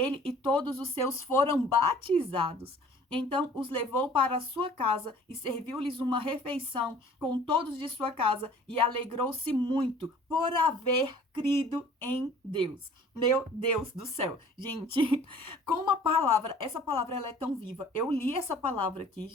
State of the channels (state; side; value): normal; both; correlation 0.50